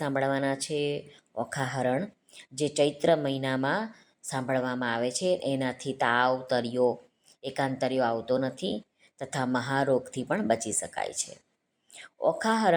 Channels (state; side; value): identical; both; correlation 1.00